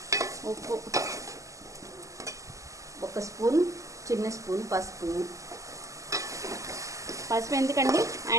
ఉప్పు, 1 స్పూన్, చిన్న స్పూన్ పసుపు. పసుపు ఎందుకండి?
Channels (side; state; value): left; late; 0.16 ms